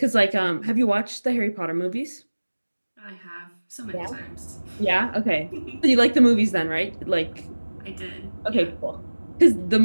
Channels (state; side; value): inverted; both; correlation -1.00